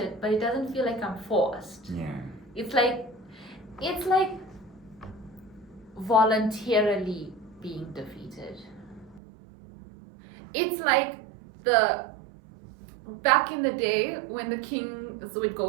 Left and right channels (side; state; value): left; drops out; at 9.2 s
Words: but it doesn't feel like I'm forced. Yeah. It's like voluntarily being defeated. It's like back in the day when the kings would